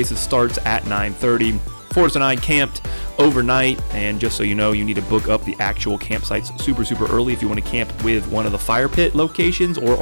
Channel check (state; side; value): inverted; both; correlation -1.00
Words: starts at 9:30. Forrest and I camped overnight, and just so you know, you need to book up the actual campsites super early if you want to camp with one of the fire pit locations or